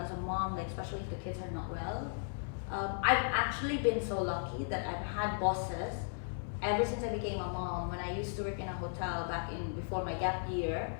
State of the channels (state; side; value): silent; right; 54 dB below the other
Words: a mom, like especially if the kids are not well, I've actually been so lucky that I've had bosses ever since I became a mom. When I used to work in a hotel back in before my gap year,